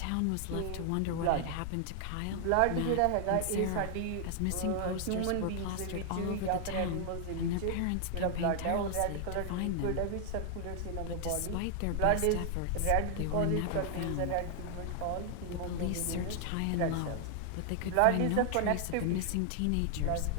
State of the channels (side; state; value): both; different; correlation 0.00